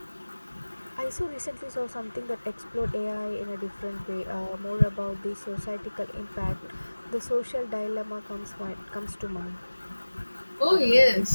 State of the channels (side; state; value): both; inverted; correlation -1.00